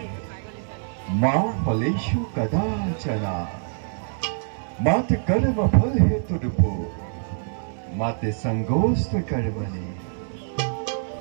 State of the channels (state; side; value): silent; left; 62 dB below the other